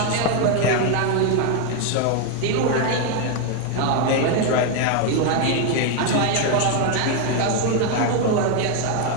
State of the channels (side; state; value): both; different; correlation 0.01